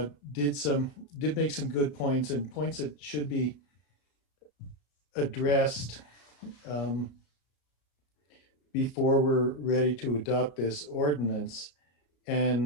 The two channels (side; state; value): right; late; 34 ms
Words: did make some good points, and points that should be addressed before we're ready to adopt this ordinance.